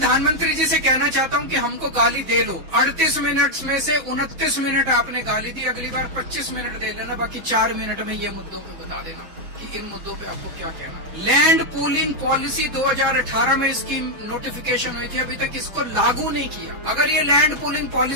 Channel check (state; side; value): late; left; 6.2 ms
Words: जी से कहना चाहता हूं कि हमको गाली दे लो। 38 मिनट में से 29 मिनट आपने गाली दी, अगली बार 25 मिनट दे लेना, बाकी 4 मिनट में ये मुद्दों को बता देना कि इन मुद्दों पे आपको क्या कहना है। लैंड पूलिंग पॉलिसी 2018 में इसकी नोटिफिकेशन हुई थी, अभी तक इसको लागू नहीं किया। अगर ये लैंड पूलिंग